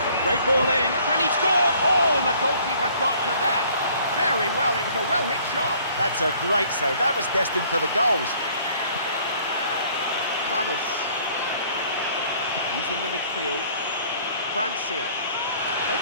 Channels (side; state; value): both; inverted; correlation -0.57